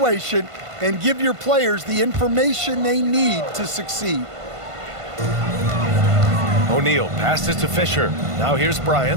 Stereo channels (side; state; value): left; late; 1.5 ms